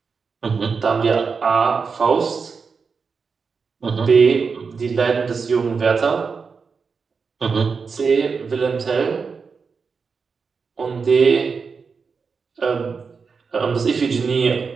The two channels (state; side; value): quieter; left; 5.2 dB